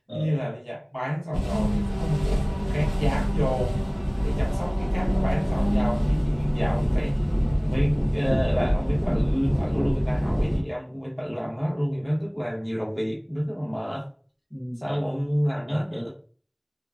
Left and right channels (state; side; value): identical; both; correlation 1.00